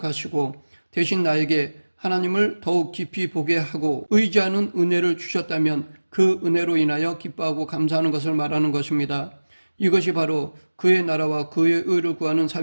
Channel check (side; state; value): both; inverted; correlation -1.00